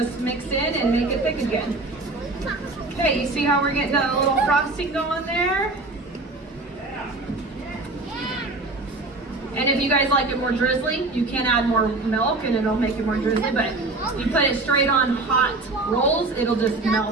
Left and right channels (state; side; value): quieter; left; 3.2 dB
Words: mix in and make it thick again. Okay, you see how we're getting a little frosting going there? And if you guys like it more drizzly, you can add more milk and it'll make it more drizzly, but you put it straight on hot rolls, it'll just